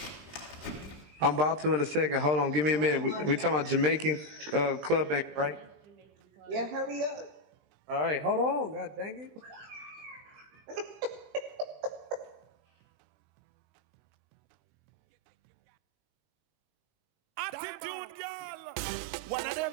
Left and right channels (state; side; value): late; left; 20 ms